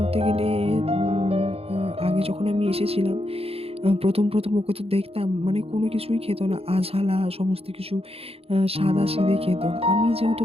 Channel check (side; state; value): left; late; 0.28 ms